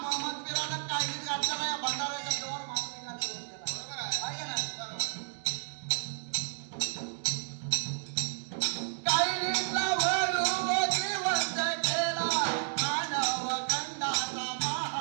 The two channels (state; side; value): silent; left; digital silence